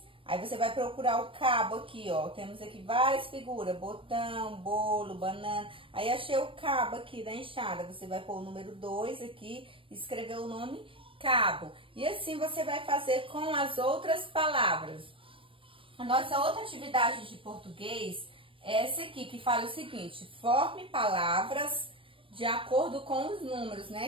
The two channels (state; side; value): late; left; 0.25 ms